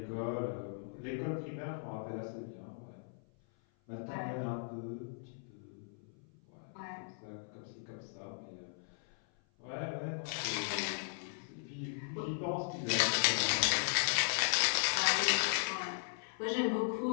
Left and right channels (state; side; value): silent; right; 53 dB below the other